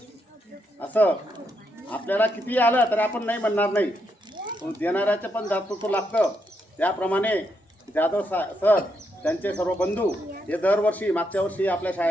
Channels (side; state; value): both; normal; correlation 0.80